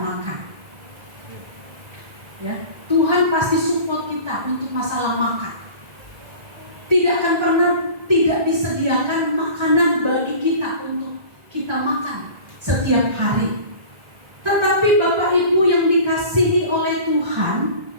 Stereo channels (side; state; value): left; late; 1.6 ms